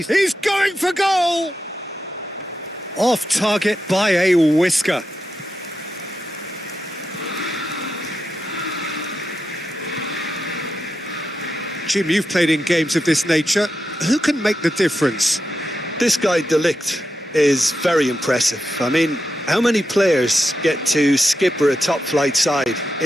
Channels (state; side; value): normal; both; correlation 0.87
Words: going for goal! Off target by a whisker. Jim, you've played in games of this nature. Who can make the difference? This guy, De Ligt, is very impressive. I mean, how many players get to skipper a top-flight side